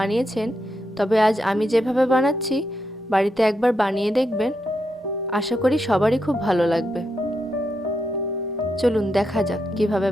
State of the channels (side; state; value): both; normal; correlation 0.83